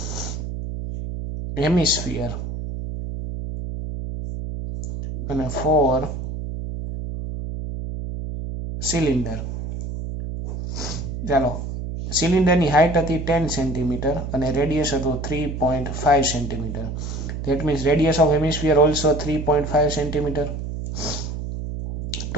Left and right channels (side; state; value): right; noise; hum, 6 dB below the sound